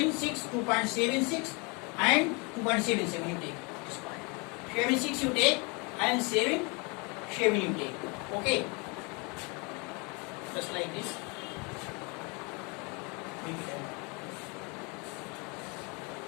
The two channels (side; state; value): right; quieter; 30.4 dB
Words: 2.76 and 2.77 you take this point. 76 you take and 7 you take. Okay. Just like this.